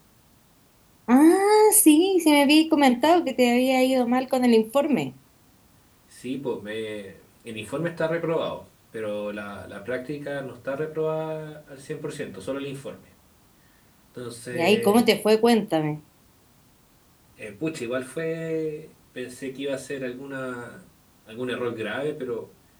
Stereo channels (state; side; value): identical; both; correlation 1.00